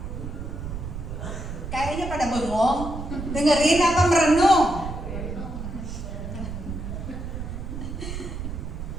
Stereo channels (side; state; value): right; noise; rumble, 7 dB below the sound